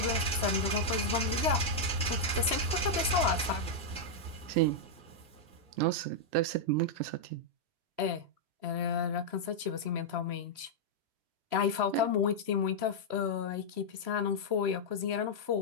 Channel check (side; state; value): left; late; 3.0 ms